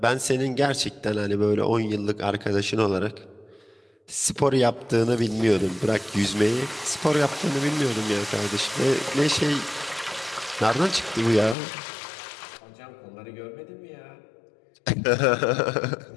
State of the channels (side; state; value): right; drops out; at 11.6 s